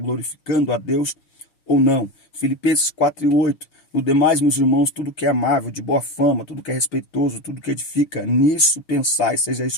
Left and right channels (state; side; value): late; right; 6.0 ms